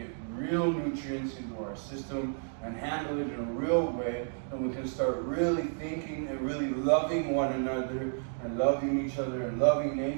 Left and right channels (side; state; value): left; silent; digital silence